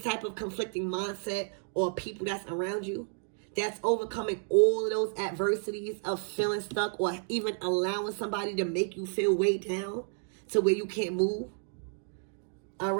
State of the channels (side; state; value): left; silent; 57 dB below the other